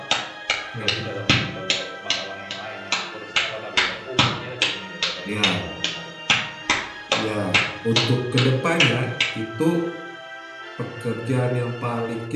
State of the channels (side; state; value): both; identical; correlation 1.00